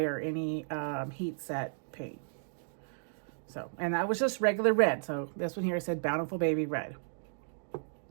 or any heat set paint. So, and that was just regular red. So this one here said Bountiful Baby Red.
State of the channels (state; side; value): silent; left; digital silence